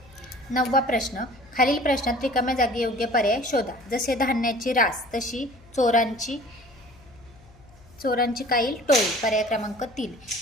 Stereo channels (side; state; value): left; noise; hum, 25 dB below the sound